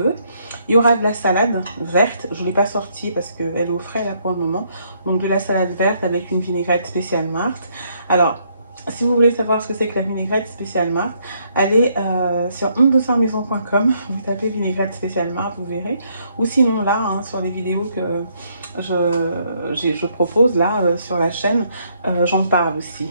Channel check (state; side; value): inverted; both; correlation -0.71